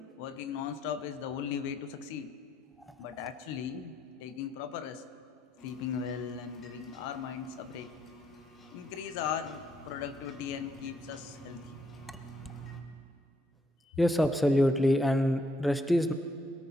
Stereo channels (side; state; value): both; normal; correlation 0.73